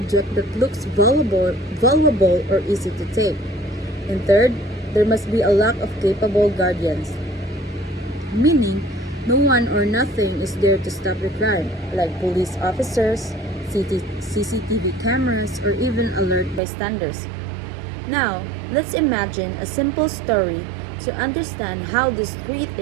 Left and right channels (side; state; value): left; drops out; at 16.6 s